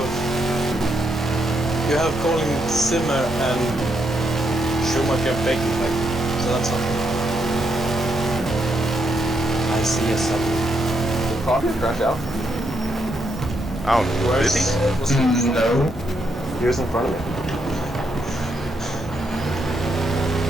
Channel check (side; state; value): both; normal; correlation 0.79